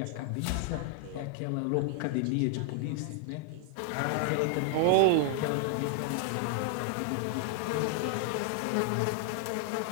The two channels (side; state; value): both; different; correlation 0.00